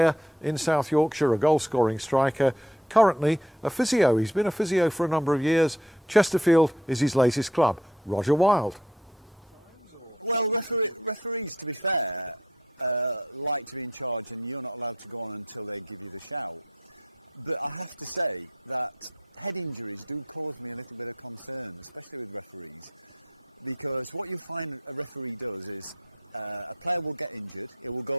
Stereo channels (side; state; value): both; normal; correlation 0.63